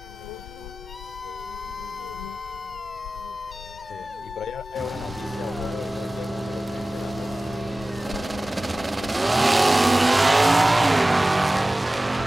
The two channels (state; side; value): normal; both; correlation 0.97